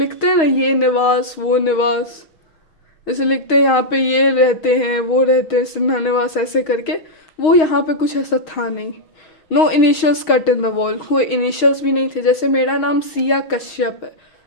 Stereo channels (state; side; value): late; right; 6.3 ms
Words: हैं ना ये निवास वो निवास, जैसे लिखते हैं यहाँ पे ये रहते हैं वो रहते हैं सिन्हा निवास ऐसे करके, वो यहाँ पे कुछ ऐसा था नहीं। No initials cut in the wall, कोई इनिशियल्स भी नहीं थे। जैसे मेरा नाम सिया कश्यप है